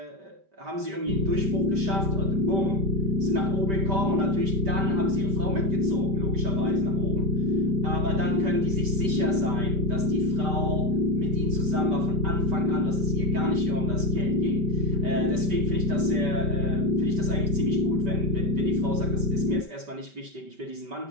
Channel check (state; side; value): late; left; 5.1 ms